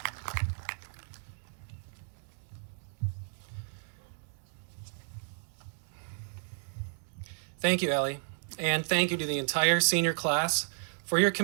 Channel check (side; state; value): left; silent; 56 dB below the other